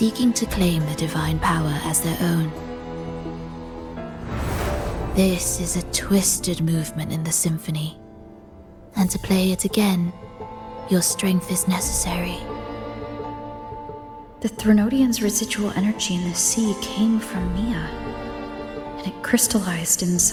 to claim the divine power as their own. This is a twisted movement in the symphony, and to play it again, your strength is necessary. The Threnodian's residual energy in the sea came from Mia, and it crystallized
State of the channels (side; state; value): both; identical; correlation 1.00